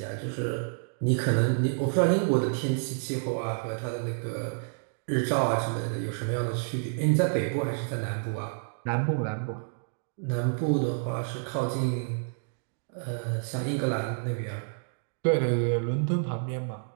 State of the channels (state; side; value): silent; left; digital silence